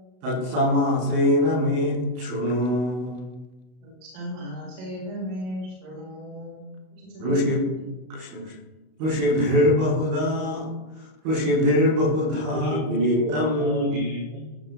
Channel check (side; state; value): left; late; 32 ms